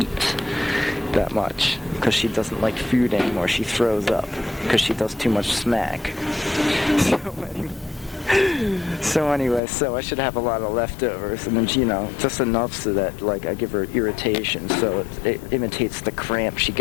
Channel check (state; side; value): drops out; right; at 9.6 s